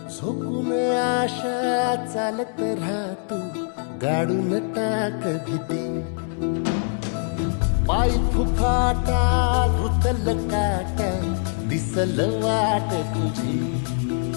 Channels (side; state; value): right; silent; 62 dB below the other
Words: झोकून आशा चालत राहतू गाडून टाक भीती पाय फुफाटा रुतल काटा दिसल वाट तुझी